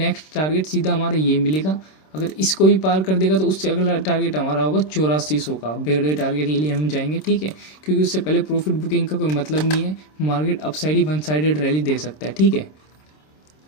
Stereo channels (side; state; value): right; late; 26 ms